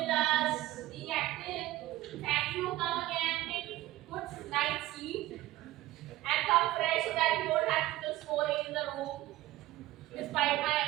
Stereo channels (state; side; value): quieter; left; 16.2 dB